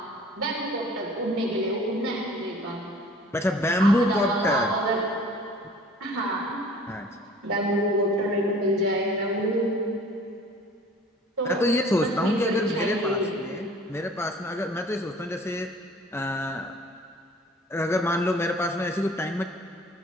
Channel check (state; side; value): normal; both; correlation 0.49